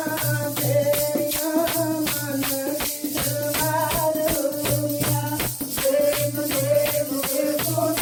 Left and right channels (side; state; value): both; identical; correlation 1.00